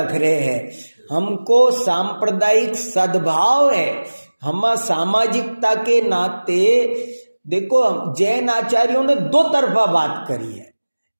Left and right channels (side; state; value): both; inverted; correlation -1.00